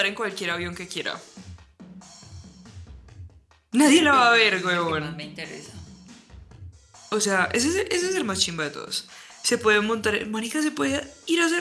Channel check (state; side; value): identical; both; correlation 1.00